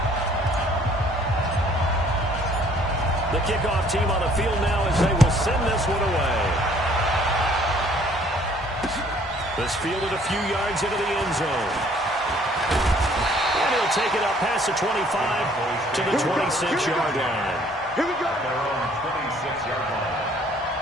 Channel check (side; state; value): both; normal; correlation 0.59